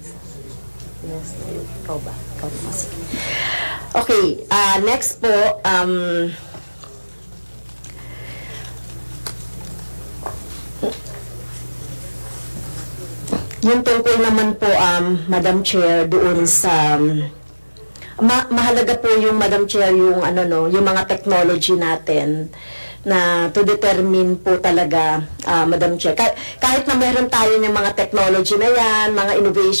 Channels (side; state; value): both; inverted; correlation -1.00